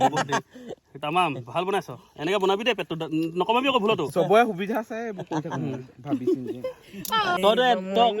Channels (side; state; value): both; identical; correlation 1.00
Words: তামাম ভাল বনাইছ এনেকৈ বনাবি দেই পেটটো নকমাবি আকৌ ভুলতো চবৰে সুবিধা আছে ভাবিছো তই